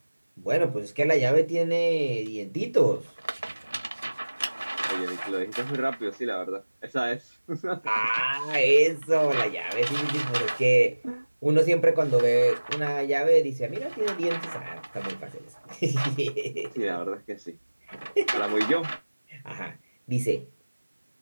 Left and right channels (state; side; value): inverted; both; correlation -1.00